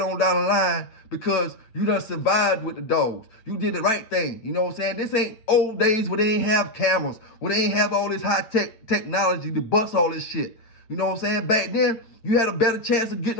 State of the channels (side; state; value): right; late; 8.9 ms